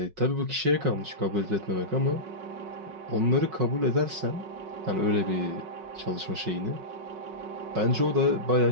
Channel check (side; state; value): left; late; 5.4 ms